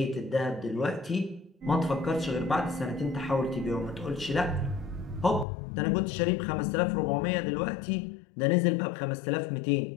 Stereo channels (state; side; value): drops out; right; at 5.5 s